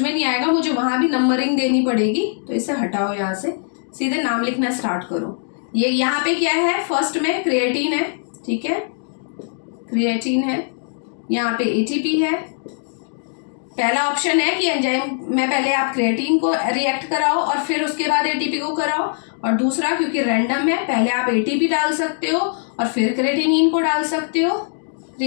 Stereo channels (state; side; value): silent; right; digital silence